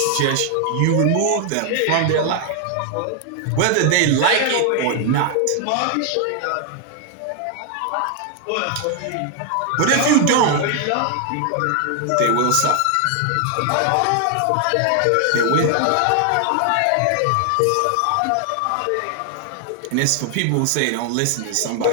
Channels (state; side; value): different; both; correlation 0.00